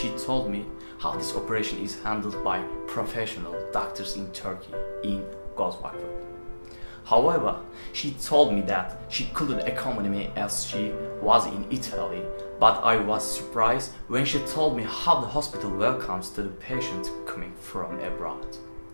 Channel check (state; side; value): inverted; both; correlation -1.00